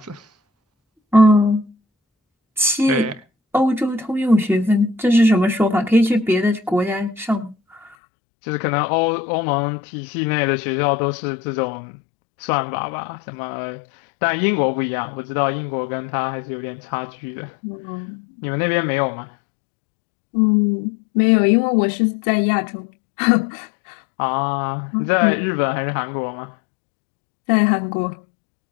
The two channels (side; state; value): right; drops out; at 8.0 s